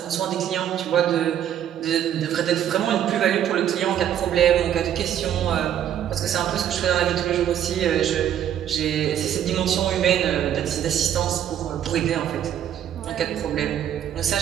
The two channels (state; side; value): quieter; left; 10.3 dB